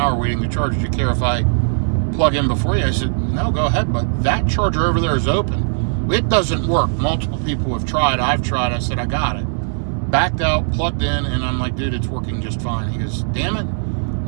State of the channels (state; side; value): silent; left; digital silence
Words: waiting to charge. Do you care if I plug in before you? I said, no, go ahead, but that charger over there is open. It doesn't work. Multiple people have tried. I've tried. I said, I got it. Backed out, plugged in, and I'm like, dude, it's working just fine. He goes, damn it,